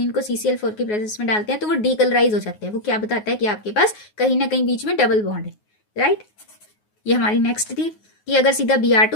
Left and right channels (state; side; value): late; right; 9.5 ms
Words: को CCl4 की प्रेजेंस में डालते हैं तो वो डीकलराइज हो जाते हैं। वो क्या बताता है कि आपके पास कहीं ना कहीं बीच में डबल बॉन्ड है। राइट, ये हमारी नेक्स्ट थी कि अगर सीधा